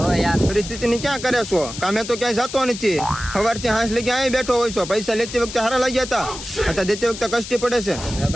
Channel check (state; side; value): noise; left; hiss, 10 dB below the sound